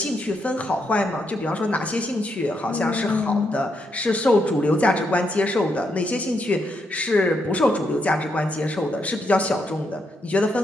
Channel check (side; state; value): both; normal; correlation 0.79